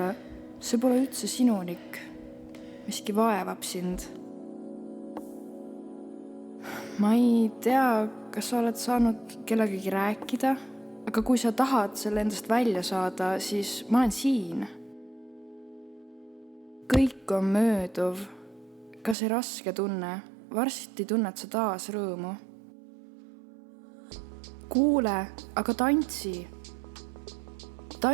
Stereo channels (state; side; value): drops out; left; at 19.2 s